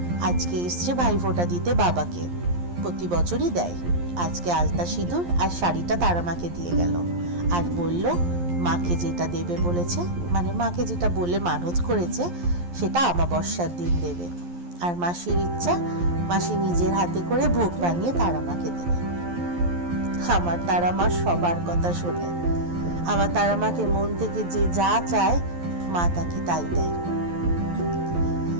আজকে এসছে ভাইফোঁটা দিতে বাবাকে, প্রতি বছরই দেয়। আজকে আলতা সিঁদুর আর শাড়িটা তারা মাকে দিয়ে গেল, আর বলল মাকে যেটা দেবে বলেছে, মানে মাকে যেটা বলে মানত করেছে সেটা অমাবস্যার দিন দেবে। আর মাসির ইচ্ছা, মাসি নিজের হাতে করে ভোগ বানিয়ে তারা মাকে দেবে। আমার তারা মা সবার কথা শোনে, আমার তারা মাকে মন থেকে যে যা চায় মা তাকে তাই দেয়,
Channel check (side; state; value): left; late; 11 ms